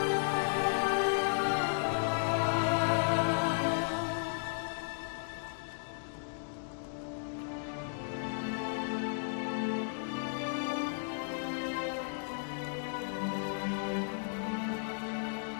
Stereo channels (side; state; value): right; silent; digital silence